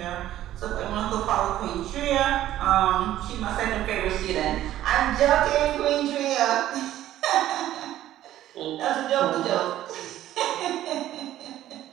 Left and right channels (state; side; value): quieter; left; 13.2 dB